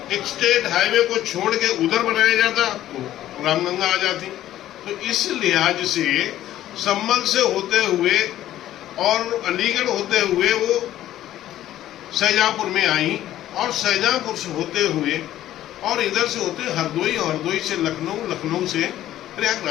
एक स्टेट हाईवे को छोड़ के उधर बनाया जाता तो रामगंगा आ जाती। तो इस लिहाज से संभल से होते हुए और अलीगढ़ होते हुए वो शाहजहांपुर में आई, और शाहजहांपुर से होते हुए और इधर से होते हरदोई, हरदोई से लखनऊ, लखनऊ से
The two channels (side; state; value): right; quieter; 13.1 dB